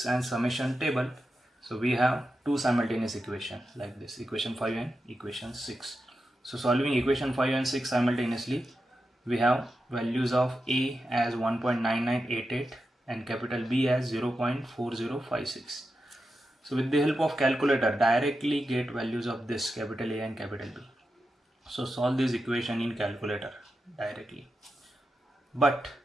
and summation table, so we have two simultaneous equations like this, equation 5 and equation 6. So solving equation 5 and 6 simultaneously, we have values of a as 1.9988 and capital B as 0.4056. So with the help of calculator, directly get values of this capital A and capital B. So solve this equation in calculator directly. But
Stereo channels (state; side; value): normal; both; correlation 0.89